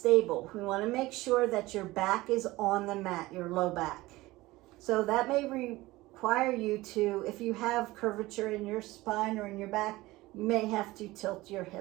We want to make sure that your back is on the mat, your low back. So that may require you to, if you have curvature in your spine or in your back, you may have to tilt your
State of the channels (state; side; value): quieter; left; 19.2 dB